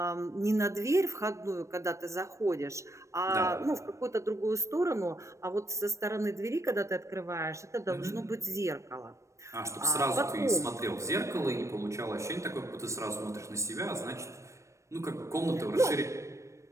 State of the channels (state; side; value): late; left; 0.15 ms